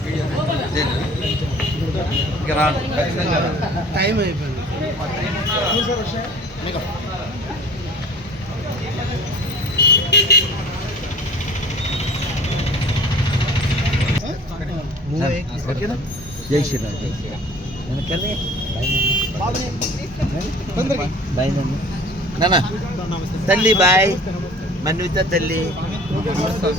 ఇంకా రాను ఖచ్చితంగా రాను. టైం అయిపోయింది. ఓకేనా? జై శ్రీరామ్. జై శ్రీరామ్. బాయ్ నాన్న. తల్లి బాయ్. మన్విత తల్లి.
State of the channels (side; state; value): both; normal; correlation 0.46